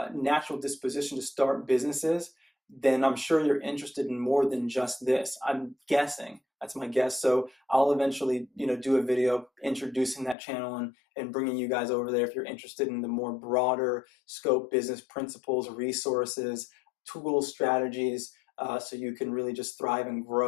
natural disposition to start businesses, then I'm sure you're interested in more than just this. I'm guessing. That's my guess. So I'll eventually, do a video introducing that channel and bringing you guys over there if you're interested in the more broader scope business principles, resources, tools, strategies, so you can really just thrive and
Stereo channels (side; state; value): right; drops out; at 10.4 s